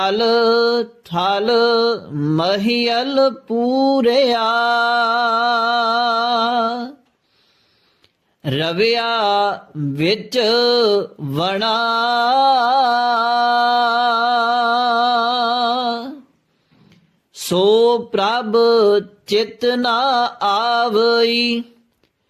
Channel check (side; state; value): both; identical; correlation 1.00